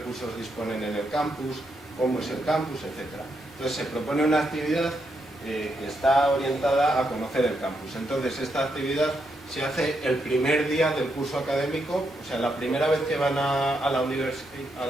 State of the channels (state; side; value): normal; both; correlation 0.80